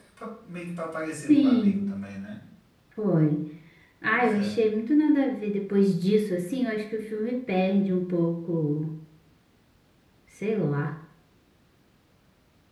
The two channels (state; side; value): identical; both; correlation 1.00